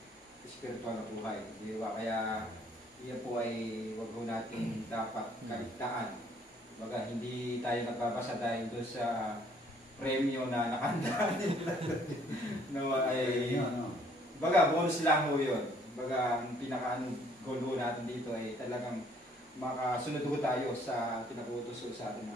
spiritual na buhay. Di ba? Kaya yan po ay wag po natin dapat kaligtaan. Baga, hindi tayo nagbabasa dahil doon sa premyo na nakandaan nila. No, ay, baga, bonus lang ho yun. Baga, ang pinaka-goal ho natin dito ay talagang makasunod ho tayo sa pinagutos sa ating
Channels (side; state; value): both; normal; correlation 0.62